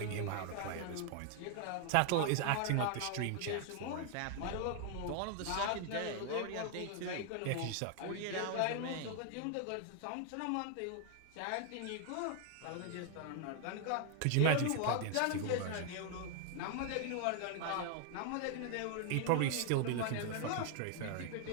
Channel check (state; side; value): different; both; correlation 0.00